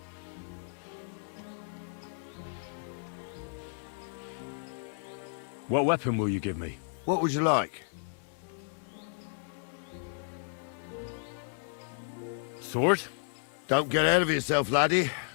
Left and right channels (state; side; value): silent; right; digital silence